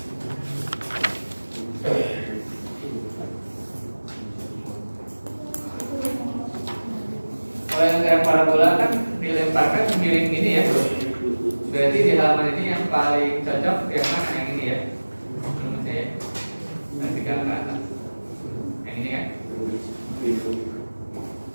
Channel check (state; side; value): inverted; both; correlation -1.00